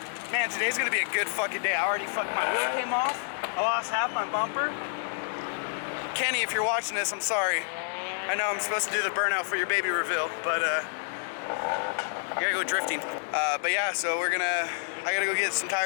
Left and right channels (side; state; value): right; silent; digital silence